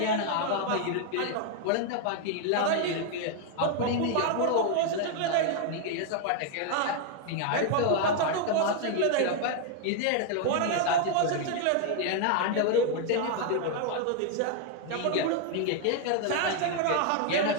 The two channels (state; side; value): different; both; correlation 0.00